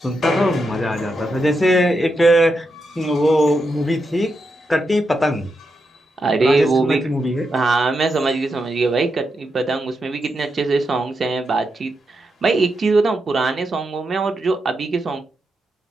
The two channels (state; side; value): normal; both; correlation 0.85